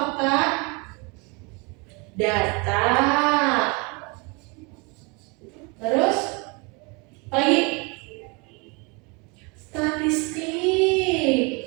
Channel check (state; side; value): quieter; left; 30.0 dB